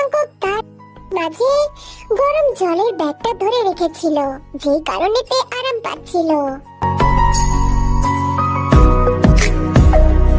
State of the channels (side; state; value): both; identical; correlation 1.00